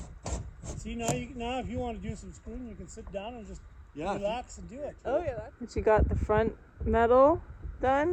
See, now if you want to do some screwing, you can sit down and just relax and do it. Oh yeah. But you got the front metal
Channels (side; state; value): both; identical; correlation 1.00